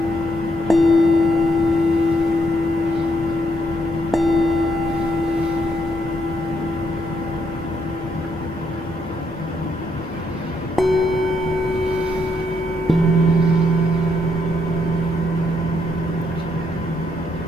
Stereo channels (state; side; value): normal; both; correlation 0.75